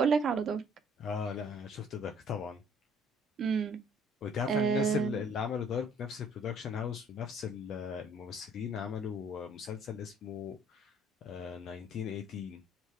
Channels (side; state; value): both; normal; correlation 0.59